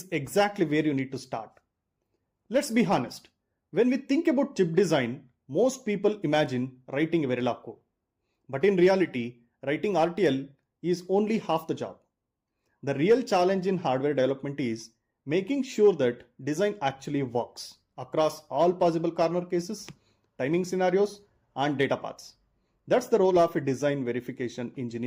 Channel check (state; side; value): identical; both; correlation 1.00